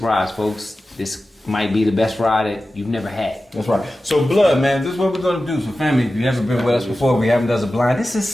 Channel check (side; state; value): both; normal; correlation 0.94